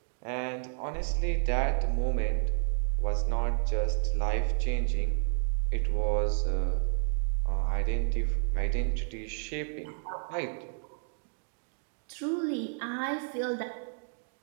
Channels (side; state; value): left; silent; 57 dB below the other